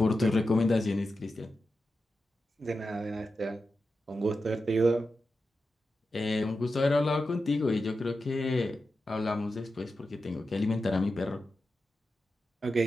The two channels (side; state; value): both; normal; correlation 0.90